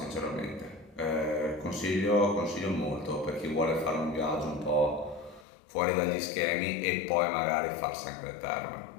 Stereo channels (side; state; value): right; drops out; at 5.5 s